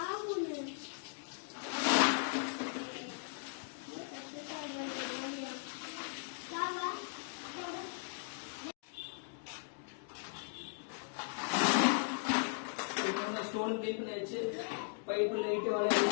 ஸ்டோன் க்ளீன் பண்ணியாச்சு. பைப்பு லைட்டு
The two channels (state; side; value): silent; right; digital silence